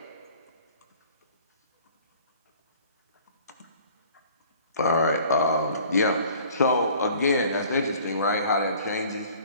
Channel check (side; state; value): both; inverted; correlation -0.51